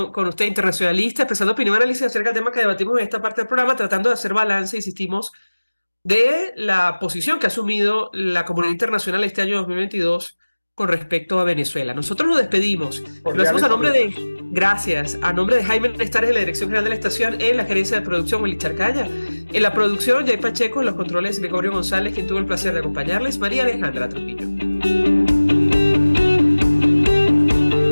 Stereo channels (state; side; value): inverted; both; correlation -1.00